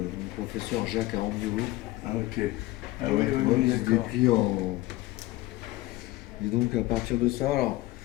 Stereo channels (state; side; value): quieter; right; 17.9 dB